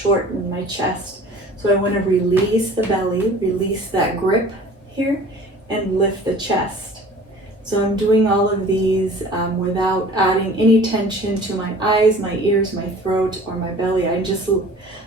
my chest. So I want to release the belly, release that grip here, and lift the chest. So I'm doing all of these without adding any tension to my eyes, my ears, my throat, or my belly. I'm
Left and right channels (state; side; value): normal; both; correlation 0.46